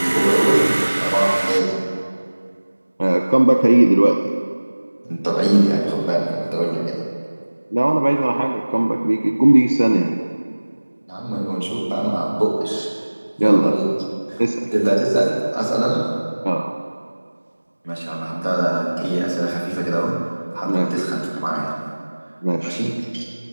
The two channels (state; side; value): inverted; both; correlation -1.00